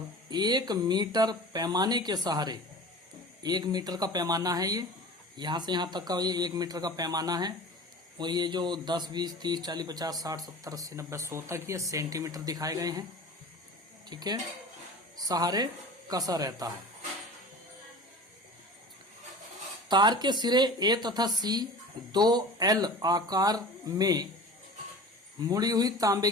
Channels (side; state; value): both; normal; correlation 0.37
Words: 1 मीटर पैमाने के सहारे, 1 मीटर का पैमाना है ये, यहां से यहां तक का ये 1 मीटर का पैमाना है। और ये जो 10, 20, 30, 40, 50, 60, 70, 80, 90, 100 तक ये सेंटीमीटर दिखाए गए हैं, ठीक है, सहारे कसा रहता है। तार के सिरे ए तथा सी 2L आकार में मुड़ी हुई तांबे